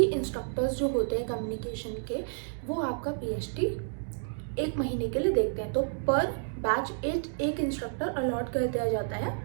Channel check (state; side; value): silent; left; digital silence